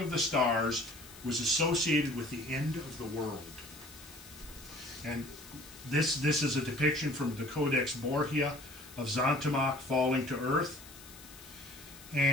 of the stars was associated with the end of the world. And this is a depiction from the Codex Borgia of Zontamach falling to earth.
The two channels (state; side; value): noise; left; hiss, 18 dB below the sound